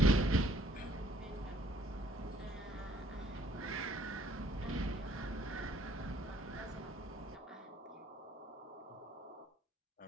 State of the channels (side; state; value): both; normal; correlation 0.63